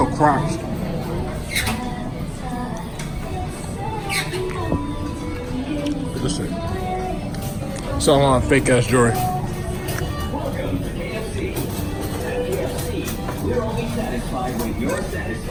cracks. Look at this thing. Selling on fake ass jewelry.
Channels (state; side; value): identical; both; correlation 1.00